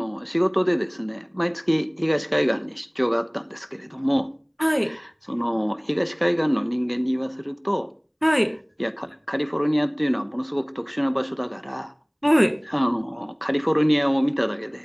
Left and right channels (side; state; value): both; identical; correlation 1.00